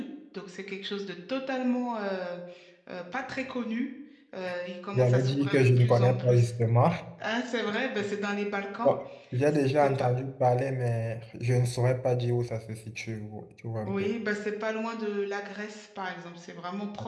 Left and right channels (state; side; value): identical; both; correlation 1.00